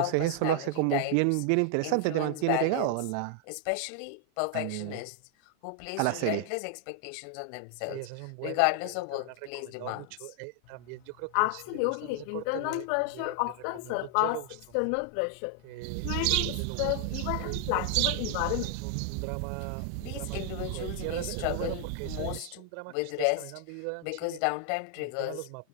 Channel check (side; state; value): both; different; correlation 0.00